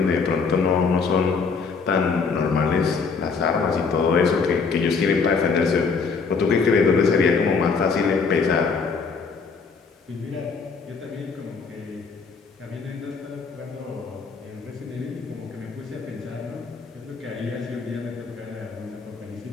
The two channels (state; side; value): quieter; right; 5.1 dB